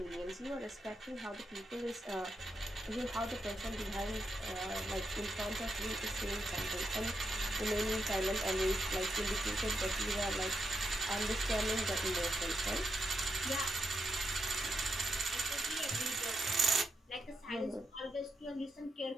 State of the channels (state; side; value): normal; both; correlation 0.83